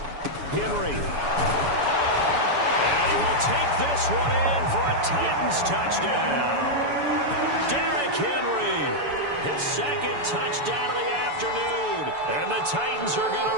Henry. And he will take this one in for a Titans touchdown. Derrick Henry, his 2nd touchdown of the afternoon. And the Titans are going to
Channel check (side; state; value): left; late; 7.0 ms